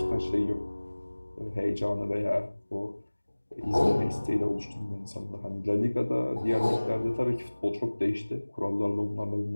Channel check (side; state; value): both; inverted; correlation -1.00